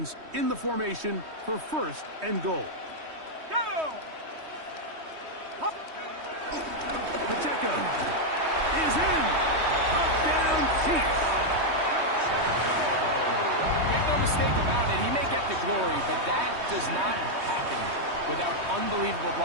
in the formation for first and goal. Go! Pacheco is in. Touchdown, Chiefs. Make no mistake about it, he may get the glory, but that does not happen without unbelievable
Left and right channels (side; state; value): left; late; 3.2 ms